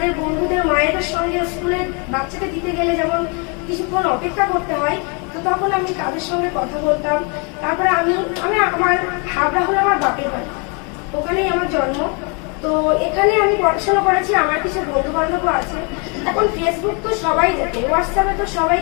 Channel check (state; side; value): quieter; right; 34.5 dB